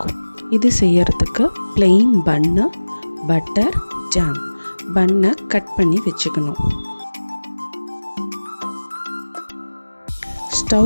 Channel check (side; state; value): both; inverted; correlation -1.00